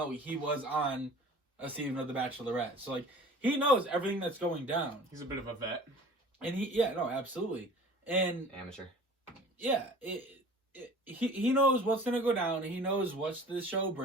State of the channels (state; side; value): normal; both; correlation 0.44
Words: he was on a season of The Bachelorette, so like he knows everything that's going down. He's a bit of a vet, and absolutely, and amateur. Yeah, he knows what's gonna go down. He knows what the show